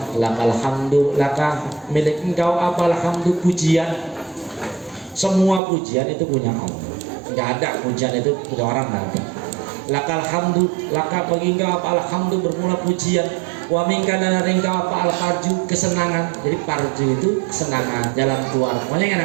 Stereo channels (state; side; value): drops out; left; at 5.6 s